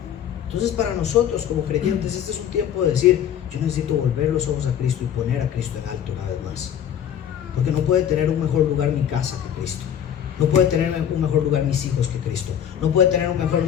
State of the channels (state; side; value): quieter; right; 9.5 dB